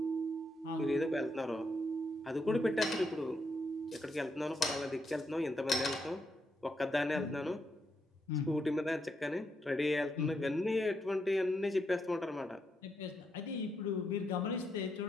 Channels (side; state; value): both; normal; correlation 0.80